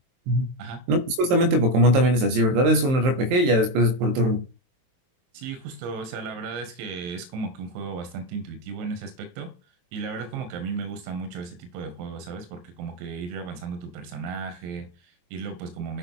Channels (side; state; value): left; late; 23 ms